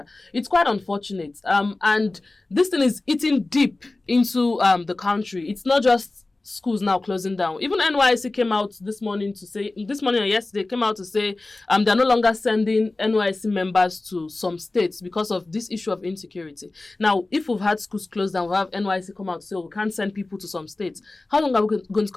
It's quite unfortunate. And this thing is eating deep into the country. It's not just schools now closing down. Even NYSC came out this morning or yesterday, came out to say they're no longer sending NYSC members to some states because of this issue of insecurity. Now, if we've had schools closed down, we'll have NYSC come out to say, we can't send people to some states. How long are we going to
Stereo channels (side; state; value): right; quieter; 3.1 dB